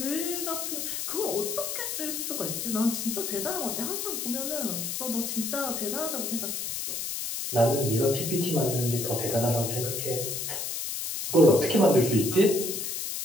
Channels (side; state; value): left; noise; hiss, 3 dB below the sound